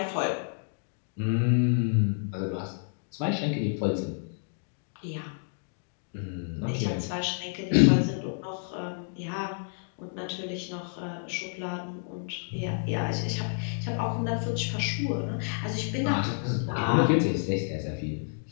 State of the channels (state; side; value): silent; right; digital silence